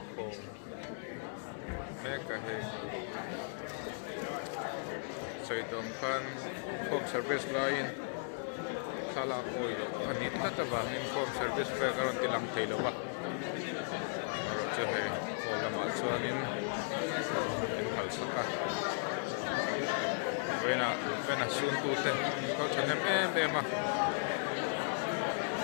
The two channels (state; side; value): silent; right; digital silence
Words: com me ka he soi dong khan com service line sala oilo ani tata wang in com service pe karon tilang thailo ba aro che he hola ma chuanin in hal saka vena sun tu te ko chanem em